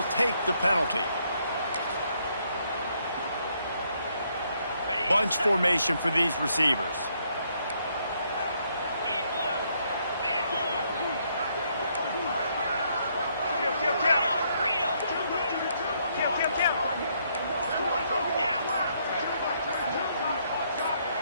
take the penalty. Bunch formation for these receivers.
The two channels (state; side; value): inverted; both; correlation -0.72